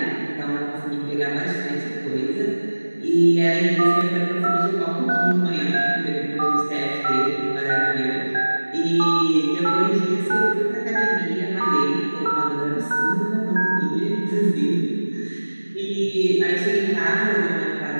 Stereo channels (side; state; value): both; inverted; correlation -1.00